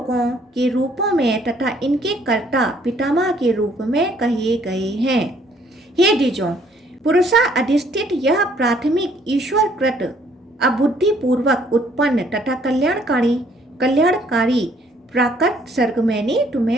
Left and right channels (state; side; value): normal; both; correlation 0.63